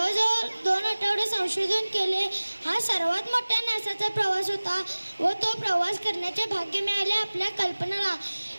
2 आठवडे संशोधन केले. हा सर्वात मोठा नासाचा प्रवास होता व तो प्रवास करण्याचे भाग्य मिळाले आपल्या कल्पनाला.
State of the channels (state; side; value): inverted; both; correlation -1.00